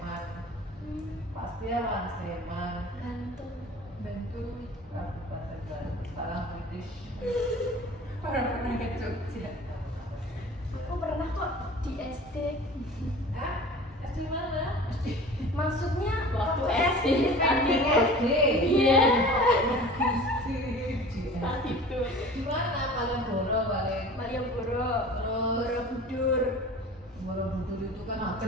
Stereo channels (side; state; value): both; normal; correlation 0.41